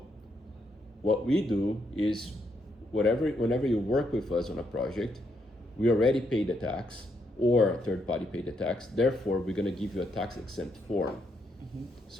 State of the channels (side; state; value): both; normal; correlation 0.77